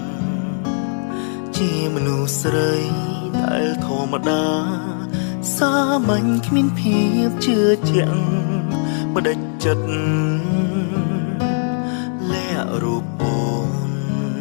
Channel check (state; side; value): silent; right; 59 dB below the other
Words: ជាមនុស្សស្រីដែលធម្មតាសាមញ្ញគ្មានភាពជឿជាក់បដិចិត្តលាក់រូបអូន